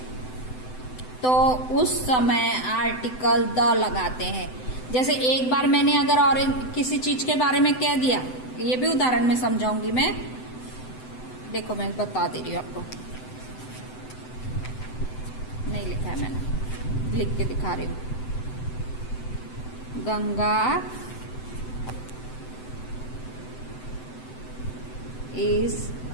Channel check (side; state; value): right; late; 7.9 ms